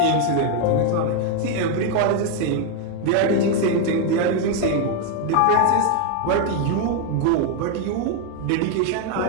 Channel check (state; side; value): different; both; correlation 0.01